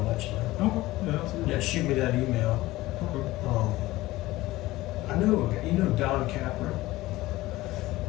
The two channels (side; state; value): right; quieter; 18.0 dB